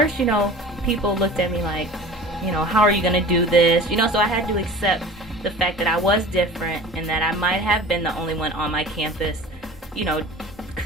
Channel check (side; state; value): both; normal; correlation 0.39